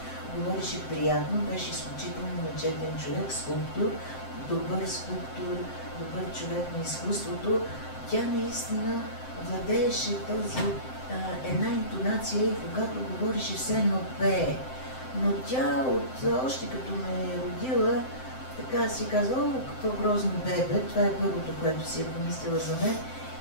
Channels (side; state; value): right; late; 7.7 ms